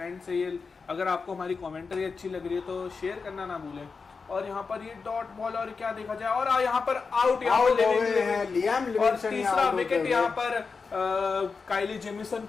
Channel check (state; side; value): quieter; right; 4.9 dB